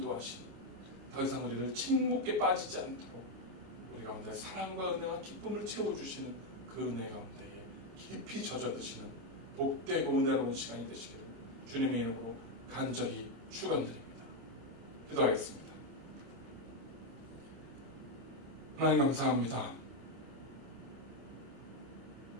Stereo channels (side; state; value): left; late; 26 ms